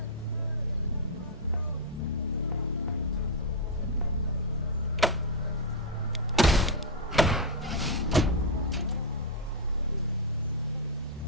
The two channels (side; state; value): both; normal; correlation -0.02